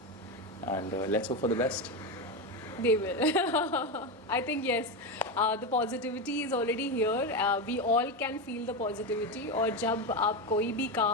and let's hope for the best. They will. I think yes, the positivity is already here. We all can feel the positivity. और जब आप कोई भी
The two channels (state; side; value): normal; both; correlation 0.14